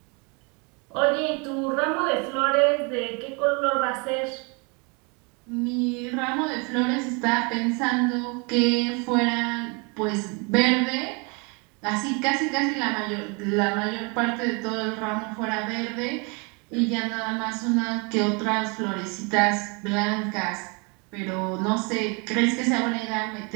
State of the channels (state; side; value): quieter; left; 31.9 dB